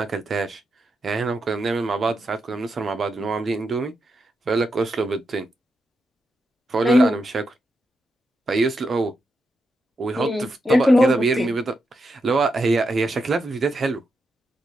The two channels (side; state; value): both; normal; correlation 0.85